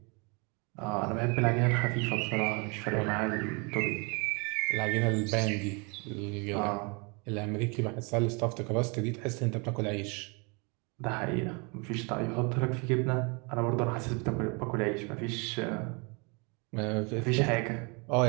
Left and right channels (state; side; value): quieter; left; 31.5 dB